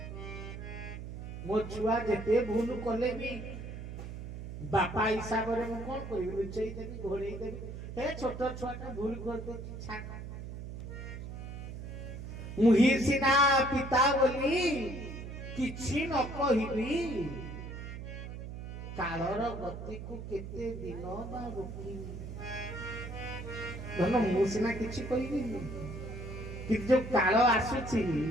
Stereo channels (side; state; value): right; noise; hum, 9 dB below the sound